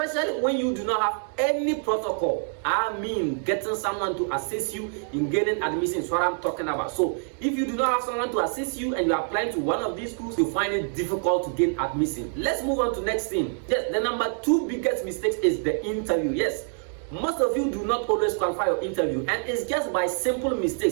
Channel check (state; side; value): silent; left; 56 dB below the other